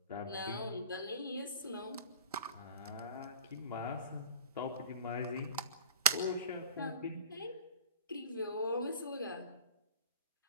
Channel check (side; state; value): both; inverted; correlation -0.38